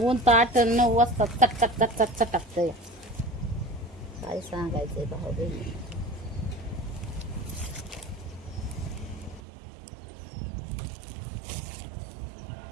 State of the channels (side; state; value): left; drops out; at 9.4 s